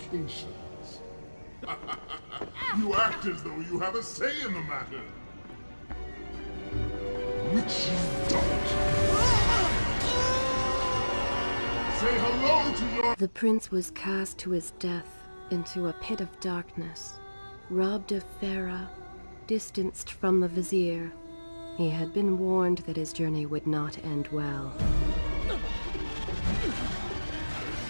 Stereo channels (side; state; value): both; inverted; correlation -1.00